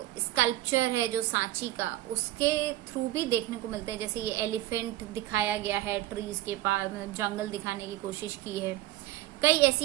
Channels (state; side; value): quieter; left; 15.3 dB